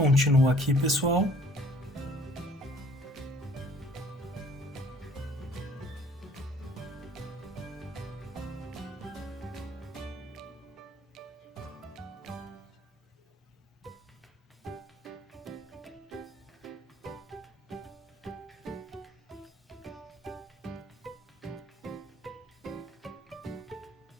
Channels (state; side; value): normal; both; correlation 0.55